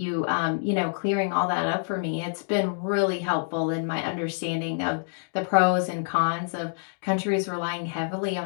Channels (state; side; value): silent; right; digital silence